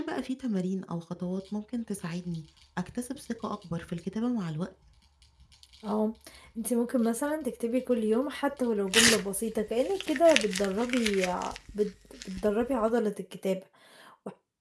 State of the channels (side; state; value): both; identical; correlation 1.00